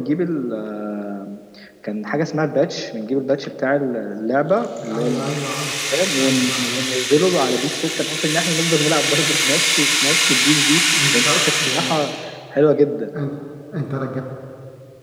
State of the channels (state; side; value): identical; both; correlation 1.00